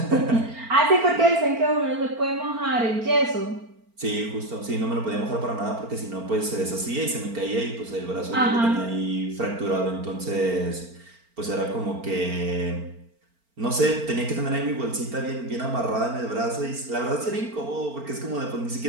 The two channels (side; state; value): left; late; 4.4 ms